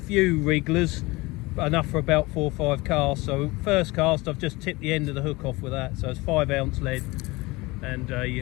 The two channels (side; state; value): right; quieter; 22.5 dB